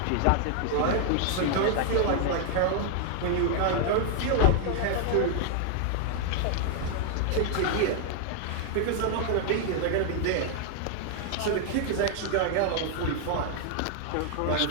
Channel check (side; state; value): both; different; correlation 0.00